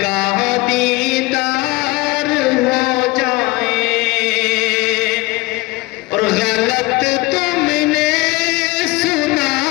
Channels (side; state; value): right; quieter; 21.8 dB